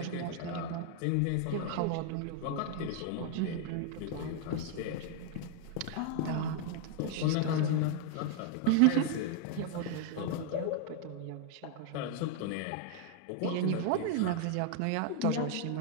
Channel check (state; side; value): different; both; correlation 0.00